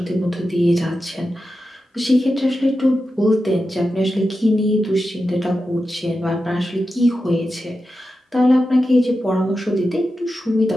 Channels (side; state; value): both; normal; correlation 0.91